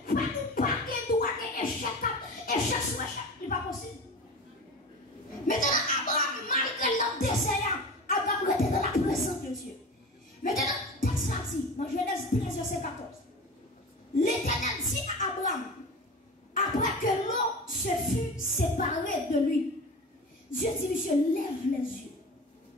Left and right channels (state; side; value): normal; both; correlation 0.32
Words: ou pas qu'à droit échec sur échec, ce n'est pas possible. Maintenant, Abraham, malgré leur désert, Abraham était dans la présence de Dieu. Maintenant, texte là dit, dans Genèse 13, verset 14, l'Éternel dit à Abraham, après que l'eau se fut séparée de lui, Dieu dit, monsieur, lève les yeux.